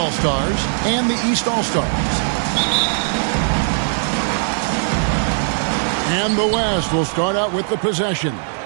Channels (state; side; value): silent; left; 67 dB below the other